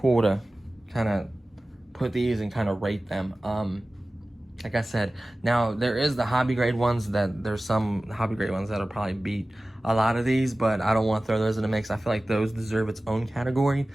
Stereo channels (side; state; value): both; normal; correlation 0.97